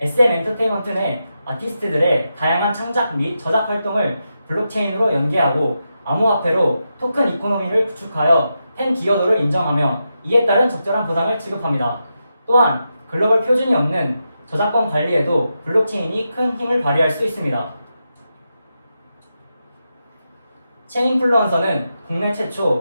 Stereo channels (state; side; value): inverted; both; correlation -0.87